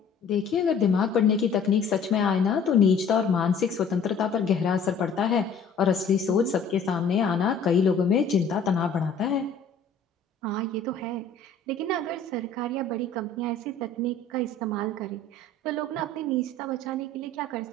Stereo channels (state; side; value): quieter; right; 4.1 dB